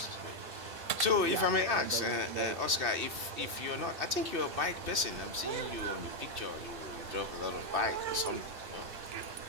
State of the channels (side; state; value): left; late; 2.6 ms